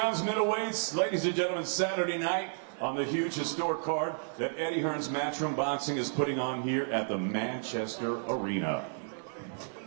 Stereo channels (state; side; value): silent; left; digital silence